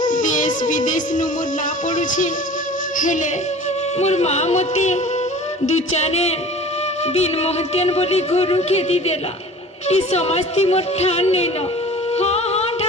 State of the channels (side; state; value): both; normal; correlation 0.42